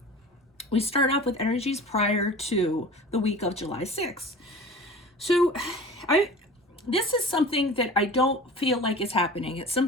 we start off with energies prior to the week of July 6th. So this is something that I don't feel like is happening. It's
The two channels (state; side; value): normal; both; correlation 0.39